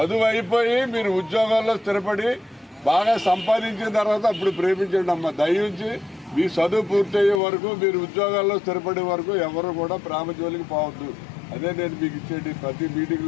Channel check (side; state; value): right; drops out; at 7.4 s